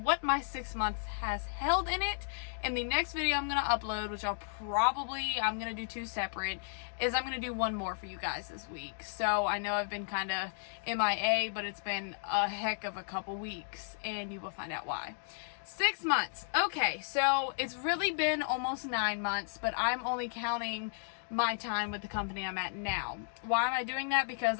my 6 months has held in it. And the next video I'm going to upload, which I'm going to do two separate, is I'm going to do one more for you guys this week. So I know I've been kind of MIA, but it's been a heck of a couple weeks, and you will find out why. 6 months. Okay, so it's really been almost 9 months, but I'm only counting my time with the company I'm at now. Why am I doing that? Because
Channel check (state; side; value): silent; right; digital silence